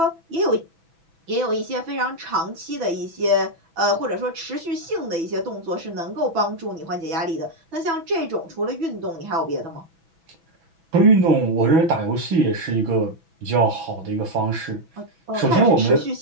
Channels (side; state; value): left; late; 6.1 ms